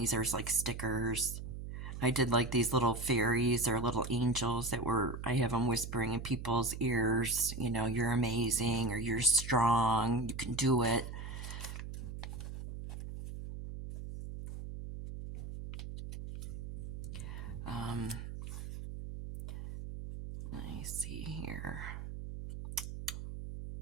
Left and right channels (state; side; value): noise; right; hum, 8 dB below the sound